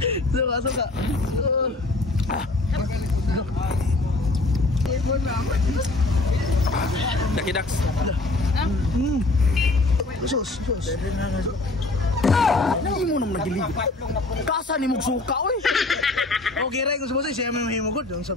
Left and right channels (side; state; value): right; quieter; 3.0 dB